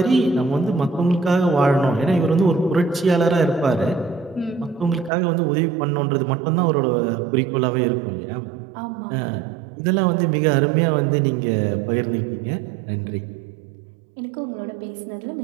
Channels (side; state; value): left; drops out; at 5.1 s